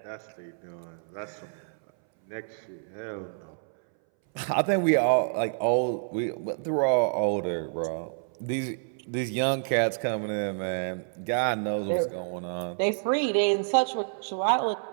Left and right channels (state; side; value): silent; left; 59 dB below the other